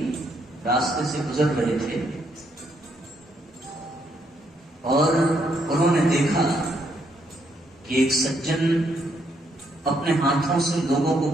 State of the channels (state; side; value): normal; both; correlation 0.74